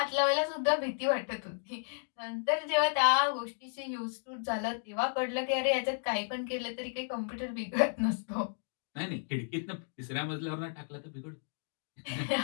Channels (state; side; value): silent; right; digital silence